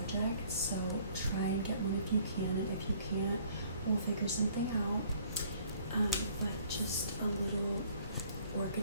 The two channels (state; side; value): inverted; both; correlation -0.58